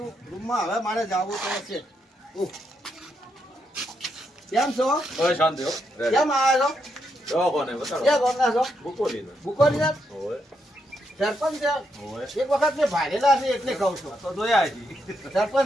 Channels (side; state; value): both; normal; correlation 0.80